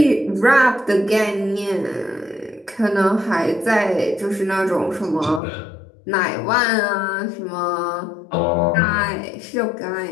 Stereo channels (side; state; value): right; drops out; at 5.4 s